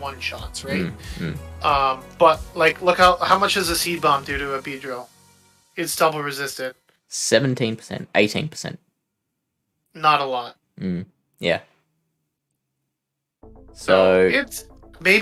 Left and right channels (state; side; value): identical; both; correlation 1.00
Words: right? But like, look how much does a Seed Bomb do to a Beedrill? It's double resisted. 17%, 18%. Not a lot. Yeah. So it's